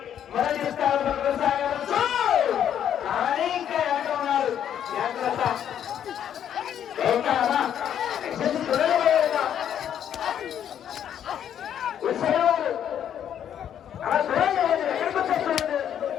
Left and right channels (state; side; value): quieter; right; 9.6 dB